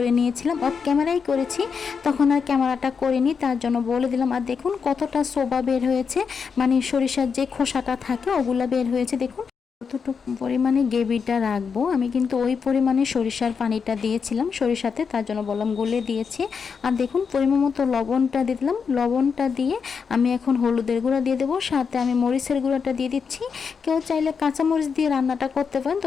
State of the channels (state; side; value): quieter; right; 6.0 dB